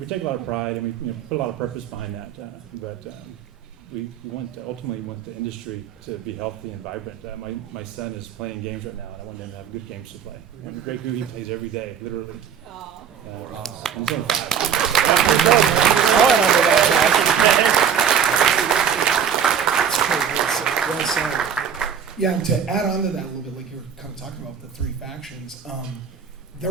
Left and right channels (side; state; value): left; quieter; 7.6 dB